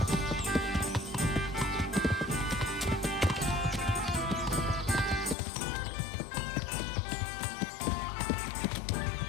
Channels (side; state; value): right; drops out; at 5.4 s